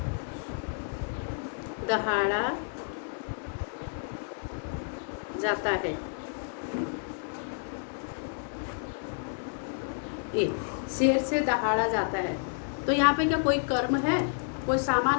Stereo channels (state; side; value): silent; right; 58 dB below the other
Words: दहाड़ा जाता है, ये शेर से दहाड़ा जाता है। तो यहाँ पे क्या कोई कर्म है, कोई